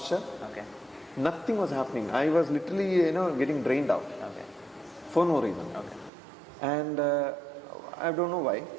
Okay. Nothing was happening. I was literally, getting drained out. Okay. For no reason. Okay. And I don't know why.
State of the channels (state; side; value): drops out; left; at 6.1 s